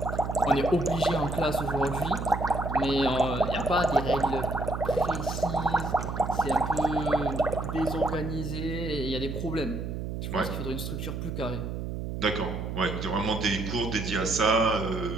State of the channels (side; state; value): right; noise; hum, 5 dB below the sound